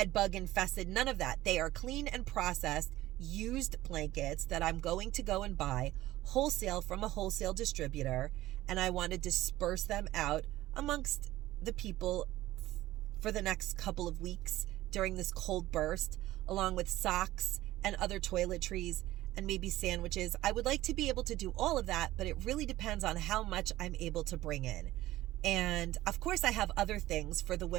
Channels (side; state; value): left; quieter; 16.1 dB